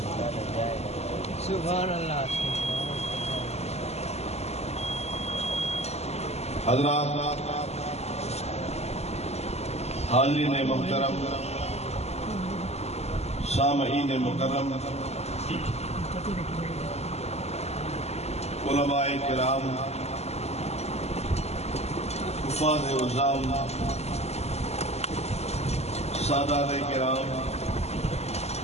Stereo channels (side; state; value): right; late; 0.31 ms